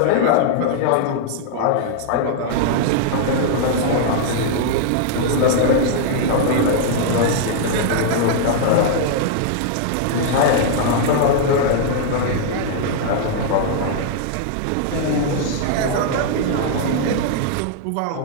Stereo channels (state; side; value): different; both; correlation -0.01